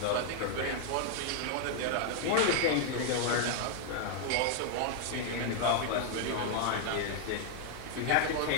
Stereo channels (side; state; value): both; different; correlation 0.00